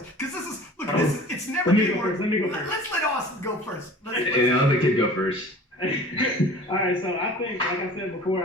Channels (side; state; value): both; normal; correlation 0.43